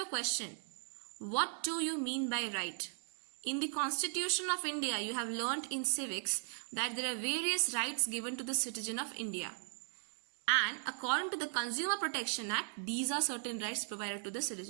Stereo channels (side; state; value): left; silent; 53 dB below the other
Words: a question. What do you mean by right? In the Constitution of India, you have learnt in civics that there are various rights given to the citizen of India. And according to the Consumer Protection Act, these are certain rights provided to the